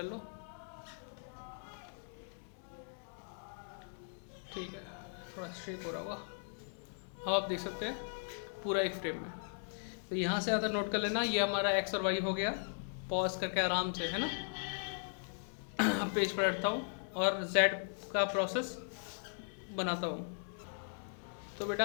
लो। ठीक है, थोड़ा शेक हो रहा होगा। हाँ, आप देख सकते हैं पूरा एक फ्रेम में। तो यहाँ से आता नोट कर लेना, ये हमारा एक्स और वाई हो गया। पॉज करके आराम से, है ना। पेज पर हटता हूँ और जेड का प्रोसेस बनाता हूँ। तो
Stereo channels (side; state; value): right; silent; digital silence